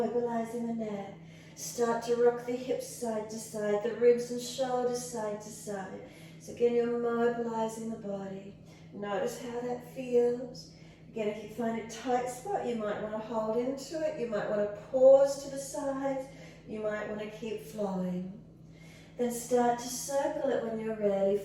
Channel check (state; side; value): identical; both; correlation 1.00